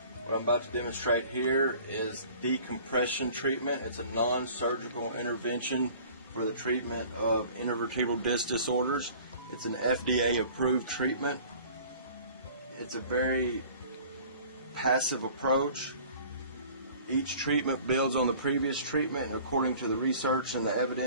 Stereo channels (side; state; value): both; inverted; correlation -0.48